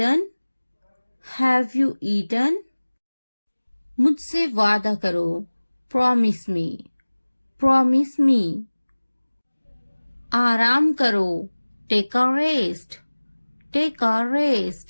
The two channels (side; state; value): both; inverted; correlation -1.00